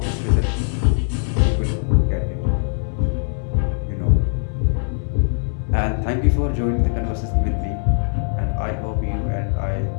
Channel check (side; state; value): right; silent; 65 dB below the other